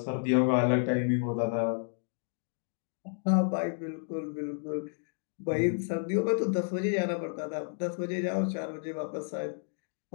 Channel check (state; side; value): silent; right; digital silence